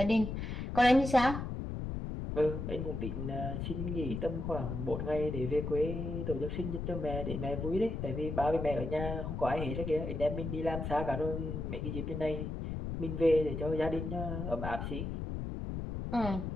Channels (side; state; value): left; noise; rumble, 4 dB below the sound